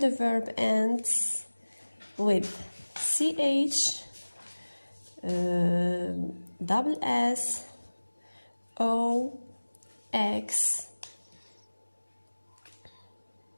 verb ends with ch, double s, o, x.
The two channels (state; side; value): inverted; both; correlation -1.00